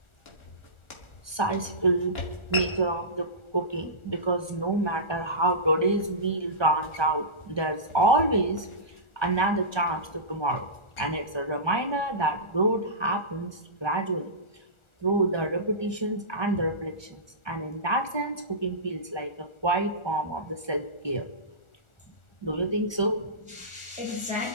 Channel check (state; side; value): late; right; 1.4 ms